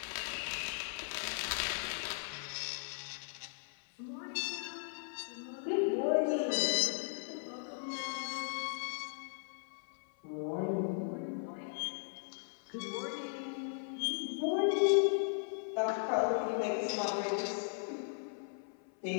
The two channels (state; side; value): silent; right; 53 dB below the other